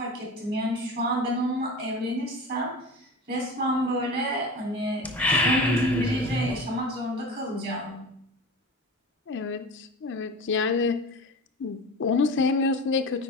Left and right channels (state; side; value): normal; both; correlation 0.32